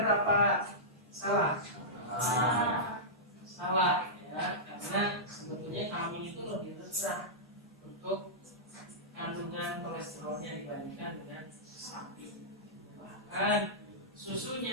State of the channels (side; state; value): both; normal; correlation -0.14